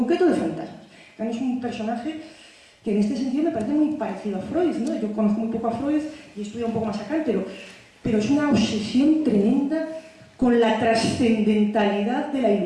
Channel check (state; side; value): identical; both; correlation 1.00